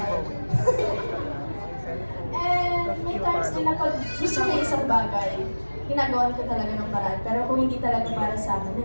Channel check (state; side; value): inverted; both; correlation -1.00